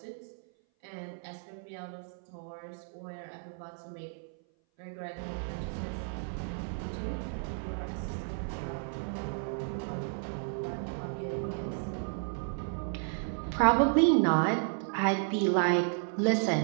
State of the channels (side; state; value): left; silent; 56 dB below the other